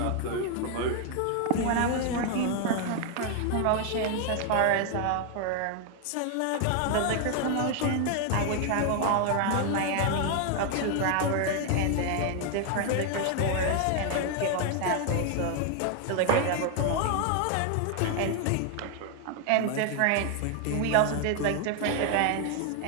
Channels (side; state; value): both; different; correlation 0.00